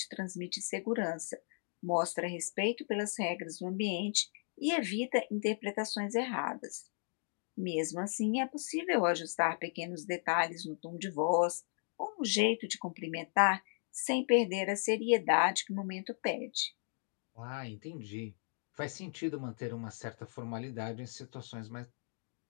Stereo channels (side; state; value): right; silent; 54 dB below the other